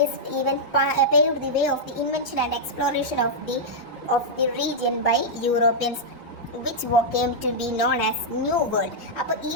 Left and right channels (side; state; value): both; normal; correlation -0.07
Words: even paved the way of the invention and exploration of the region by Europeans, which came to be known as New World. അപ്പോൾ ഈ